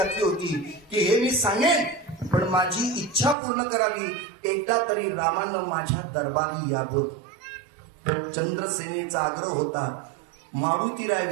होती की हे मी सांगेन पण माझी इच्छा पूर्ण करावी, एकदा तरी रामानं माझ्या दरबारी यावं. चंद्रसेनेचा आग्रह होता. मारुतीराय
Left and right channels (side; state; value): left; drops out; at 3.4 s